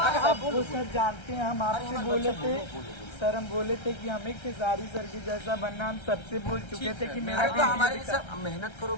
सब वो सर जानते हैं, हम आपसे बोले थे सर, हम बोले थे कि हमें खेसारी सर की जैसा बनना, हम सबसे बोल चुके थे कि मेरा तो हमारे सर मेहनत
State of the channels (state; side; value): late; right; 1.3 ms